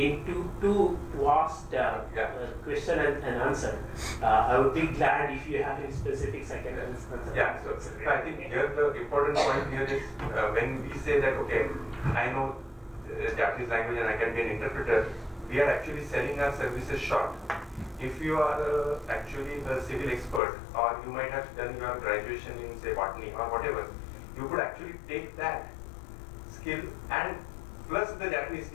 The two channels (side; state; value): right; drops out; at 20.4 s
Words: too vast question and answer. I would be glad if you have any specifics I can answer. Yeah, so I think here the important point here is when we say that, okay, I know Japanese language and I can be an interpreter, we are actually selling our services short. If you are actually the civil expert, or you might have done your graduation in say botany or whatever, you could actually take that skill and plus the Japanese